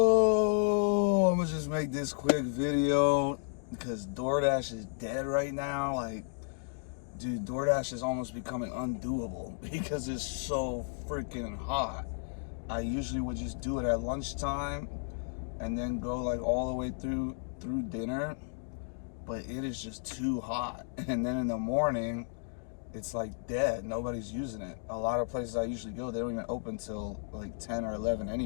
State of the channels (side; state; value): right; silent; digital silence